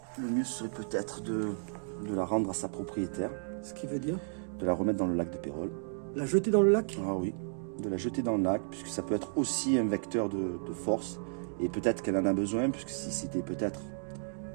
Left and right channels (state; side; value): silent; left; digital silence